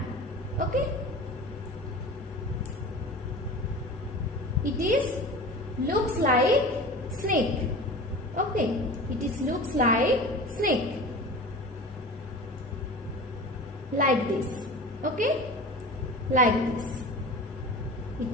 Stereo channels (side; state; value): both; normal; correlation 0.35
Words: Okay. It is looks like snake. Okay. It is looks like snake. Like this. Okay, like this. It